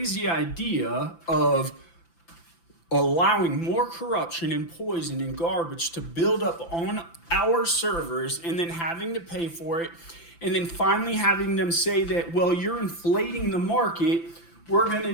idea of allowing more corruption and poison and garbage to build up on our servers and then having to pay for it, and then finally having them say that, well, you're inflating the market. We're going to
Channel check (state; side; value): late; right; 5.9 ms